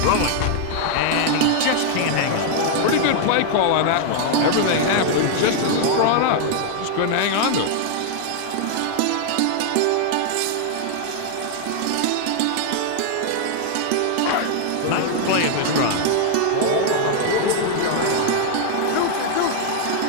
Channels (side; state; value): both; different; correlation 0.00